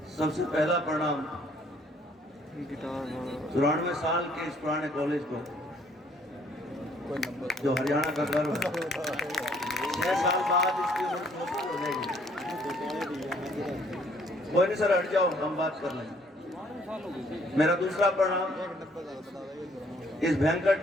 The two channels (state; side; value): normal; both; correlation 0.63